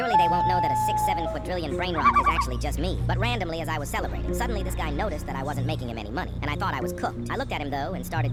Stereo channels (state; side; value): identical; both; correlation 1.00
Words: they won't know that a 6-7 quadrillion brain rot is actually just me. But randomly, as I was celebrating, suddenly this guy noticed that I wasn't making him any money, and I thought I was cooked. I looked at him, though, and started